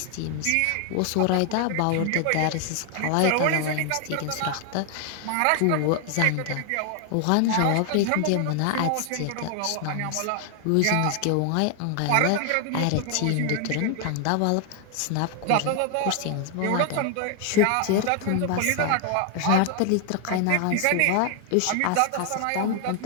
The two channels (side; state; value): both; different; correlation 0.00